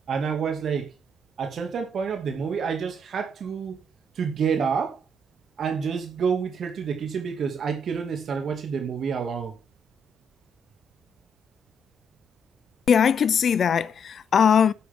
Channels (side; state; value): both; normal; correlation 0.72